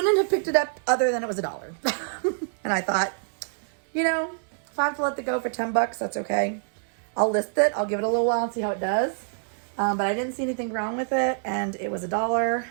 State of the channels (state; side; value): silent; left; digital silence